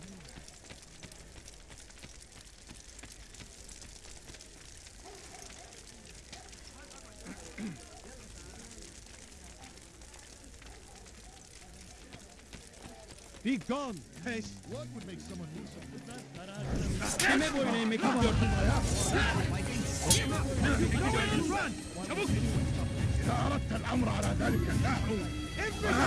Be gone, pest! What would make someone do something? Kime boyun eğmek istiyorsun? Run! Çabuk! إذا أردت الأمر على ذلك النحو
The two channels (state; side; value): identical; both; correlation 1.00